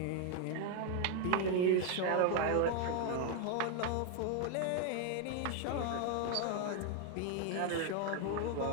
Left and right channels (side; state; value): both; different; correlation 0.01